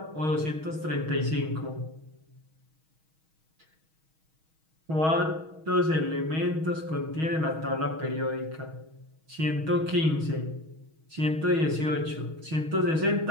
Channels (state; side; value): late; left; 6.3 ms